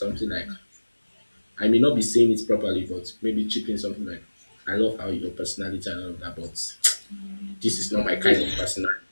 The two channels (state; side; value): inverted; both; correlation -1.00